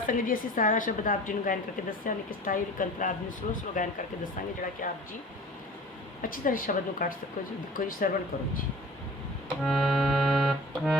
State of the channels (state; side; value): normal; both; correlation 0.42